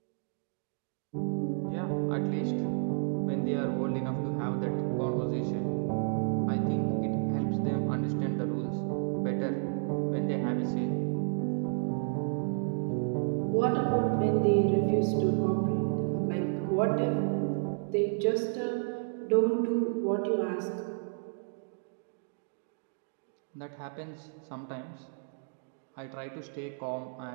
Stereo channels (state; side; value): silent; left; digital silence